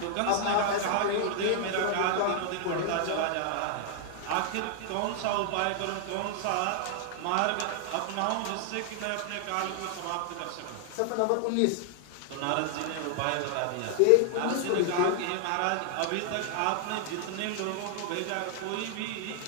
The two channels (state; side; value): different; both; correlation 0.00